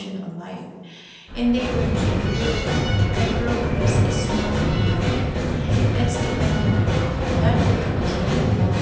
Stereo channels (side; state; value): both; identical; correlation 1.00